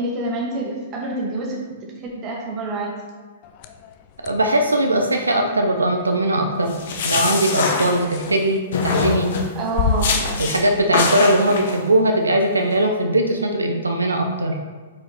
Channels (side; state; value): both; inverted; correlation -0.56